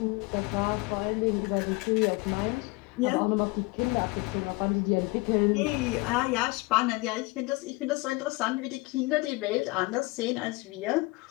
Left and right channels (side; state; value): right; quieter; 24.4 dB